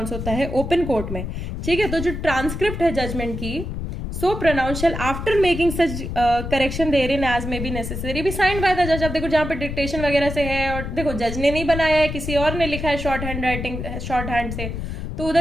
होता है ओपन कोर्ट में, ठीक है, तो जो ट्रांसक्रिप्ट है जजमेंट की, so pronounce shall after making such correction therein as may be necessary be sign by the जज। अब देखो जहां पे डिक्टेशन वगैरह से है और देखो जज ने नहीं बनाया है, किसी और ने लिखा है short hand writing, short hand से, तो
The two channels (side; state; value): left; noise; rumble, 6 dB below the sound